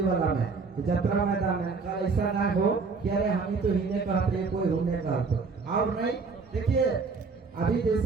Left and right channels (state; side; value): quieter; left; 4.6 dB